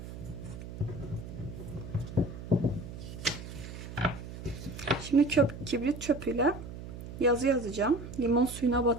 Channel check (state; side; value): noise; right; hum, 11 dB below the sound